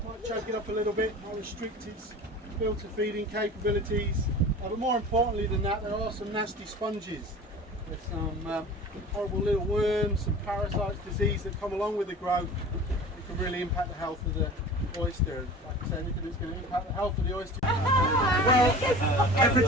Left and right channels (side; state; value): both; normal; correlation 0.38